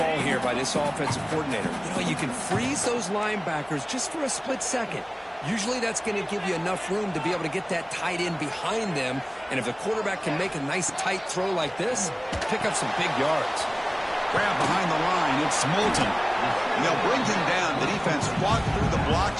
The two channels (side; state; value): both; identical; correlation 1.00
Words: here by this offensive coordinator. You know, you can freeze those linebackers just for a split second. Usually that's going to give you enough room to be able to get that tight end behind them. And if the quarterback can make a nice tight throw like this, pick up some big yards. Grab behind the line. It's Moulton. And they'll bring him down. The defense fought through the